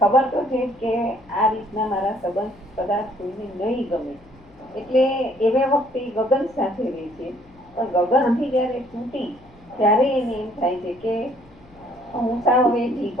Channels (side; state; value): left; noise; hum, 28 dB below the sound